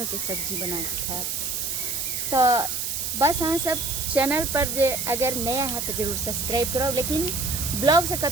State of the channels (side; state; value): right; noise; hiss, 2 dB below the sound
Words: के सब्जी बना के खाएब। तो बस अहाँ सब चैनल पर जे अगर नया है तो जरूर सब्सक्राइब करो, लेकिन ब्लॉग से